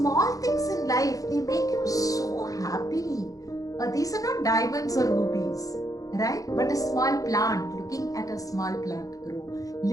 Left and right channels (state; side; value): late; right; 0.17 ms